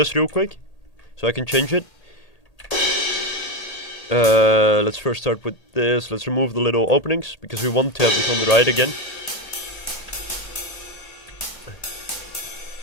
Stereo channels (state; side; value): late; right; 1.8 ms